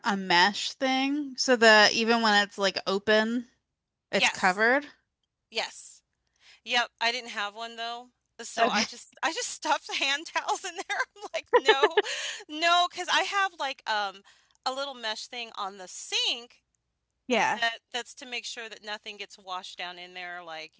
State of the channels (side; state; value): both; identical; correlation 1.00